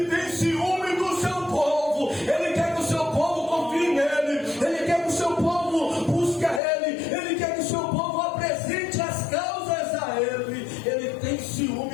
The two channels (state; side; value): drops out; right; at 6.6 s